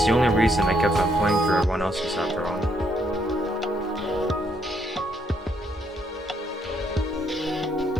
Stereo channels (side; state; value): both; normal; correlation 0.73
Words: the only reason I kept on playing for everyone else's after all.